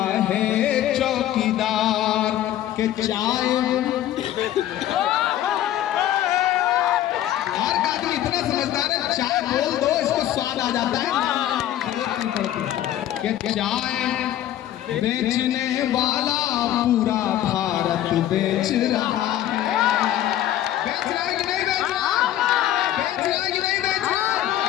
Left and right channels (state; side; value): quieter; right; 12.6 dB